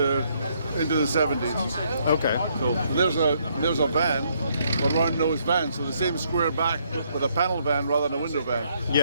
into the 70s. Okay, cool. There's a van, a round nose van, so the same square back with a panel van rather than a window van.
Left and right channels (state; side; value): inverted; both; correlation -0.71